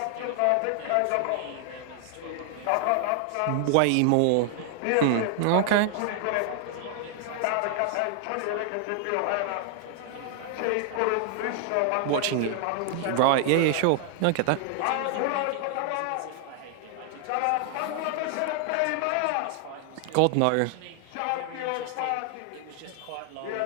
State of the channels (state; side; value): different; both; correlation 0.00